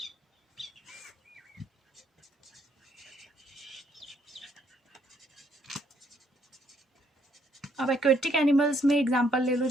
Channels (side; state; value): both; normal; correlation 0.69